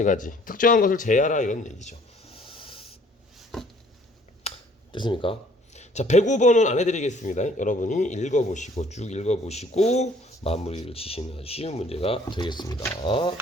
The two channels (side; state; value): both; normal; correlation 0.58